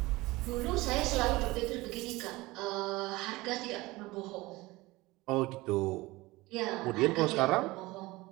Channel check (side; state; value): left; quieter; 20.7 dB